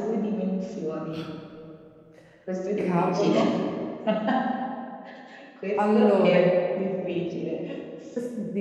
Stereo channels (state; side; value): identical; both; correlation 1.00